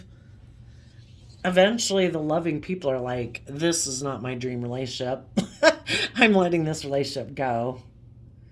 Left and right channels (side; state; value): both; identical; correlation 1.00